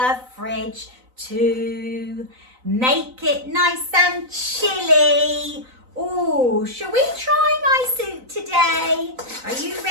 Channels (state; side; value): late; left; 4.0 ms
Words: fridge to make it nice and chilly. Oh, shall we try my soup today? Are you